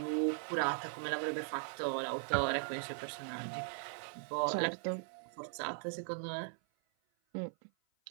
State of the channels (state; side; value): silent; left; 52 dB below the other